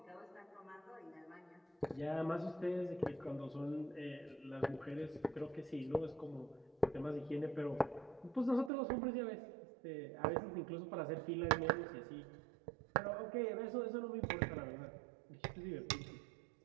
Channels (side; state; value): left; drops out; at 8.7 s